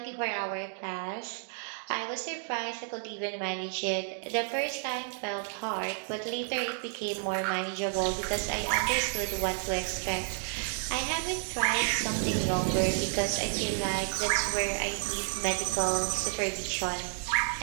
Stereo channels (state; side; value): silent; left; 57 dB below the other